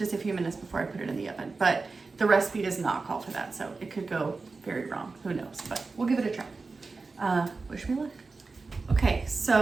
a few minutes before I put it in the oven. But the recipe does not call for that, so it could go very wrong. Who knows? But we'll give it a try. Wish me luck. Okay,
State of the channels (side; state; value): left; quieter; 4.0 dB